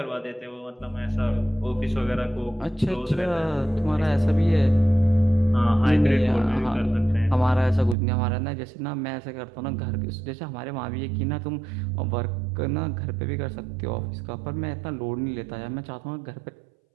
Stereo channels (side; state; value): left; drops out; at 8.0 s